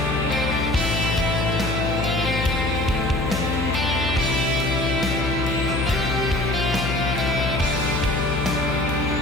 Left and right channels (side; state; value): left; noise; hum, 2 dB below the sound